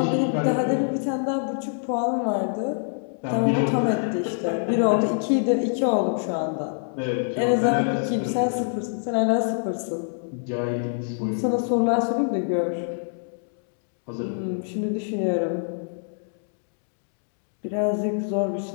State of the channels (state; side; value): silent; right; digital silence